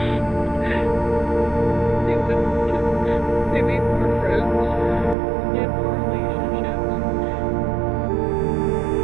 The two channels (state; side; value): drops out; left; at 5.2 s